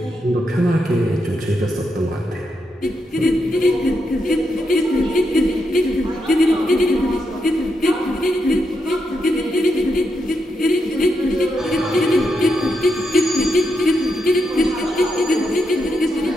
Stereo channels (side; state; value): both; normal; correlation 0.83